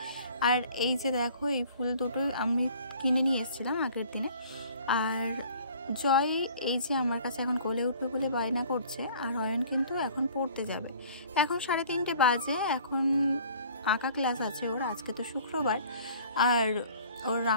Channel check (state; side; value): inverted; both; correlation -0.51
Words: আর এই যে দেখো, এই ফুল দুটো আমি কিনে নিয়ে এসেছিলাম আগের দিনে। আর জয় এই যে আমার কাছে এখন কোলে উঠবে বলে বায়না করছে, আর অয়ন কিন্তু এখন পড়তে যাবে। এখন 3:30 বাজে, এখন আঁকা ক্লাস আছে ওর, আজকে তো শুক্রবার। আর ওর